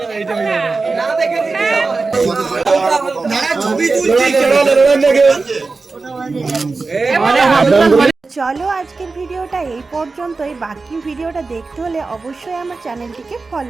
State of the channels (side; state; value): left; quieter; 3.9 dB